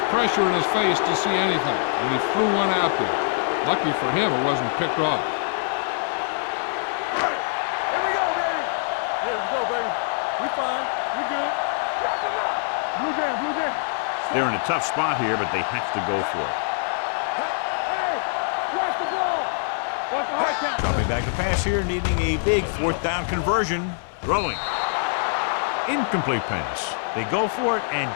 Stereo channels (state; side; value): silent; right; 62 dB below the other